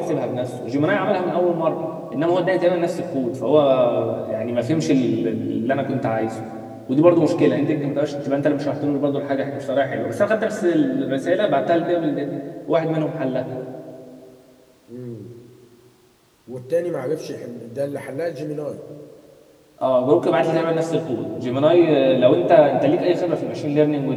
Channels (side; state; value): both; identical; correlation 1.00